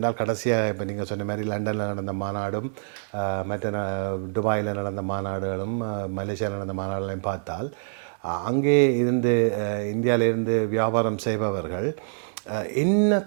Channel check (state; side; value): silent; left; digital silence